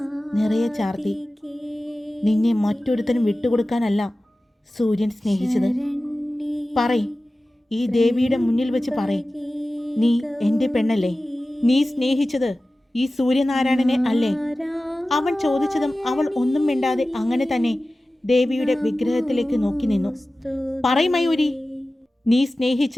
നിറയെ ചാർത്തി. നിന്നെ മറ്റൊരുത്തനും വിട്ടുകൊടുക്കാനല്ല സൂര്യൻ സ്നേഹിച്ചത്. പറയ്, ഈ ദേവിയുടെ മുന്നിൽ വെച്ച് പറയ്, നീ എൻ്റെ പെണ്ണല്ലേ? നീ സ്നേഹിച്ചത് ഈ സൂര്യനാരായണനെ അല്ലേ? അവൻ ചോദിച്ചതും അവൾ ഒന്നും മിണ്ടാതെ അങ്ങനെ തന്നെ ദേവിയുടെ വിഗ്രഹത്തിലേക്ക് നോക്കി നിന്നു. പറയ് മയൂരി, നീ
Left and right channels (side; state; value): both; normal; correlation 0.96